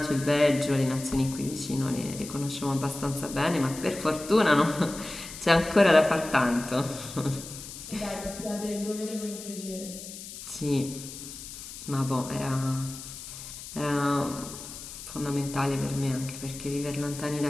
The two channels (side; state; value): left; noise; hiss, 12 dB below the sound